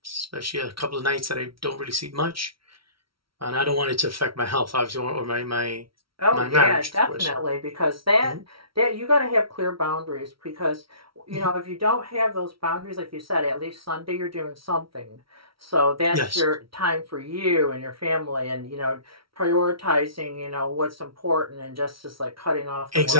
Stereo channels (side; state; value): left; late; 0.75 ms